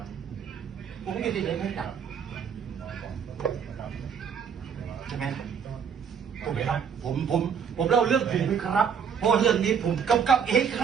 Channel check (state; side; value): quieter; left; 7.1 dB